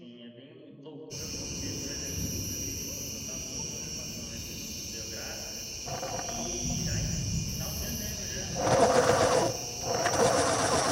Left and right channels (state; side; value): identical; both; correlation 1.00